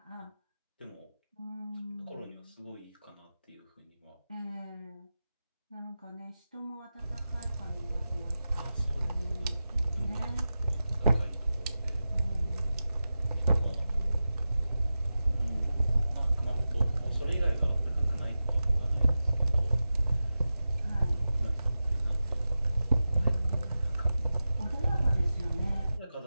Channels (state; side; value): inverted; both; correlation -0.93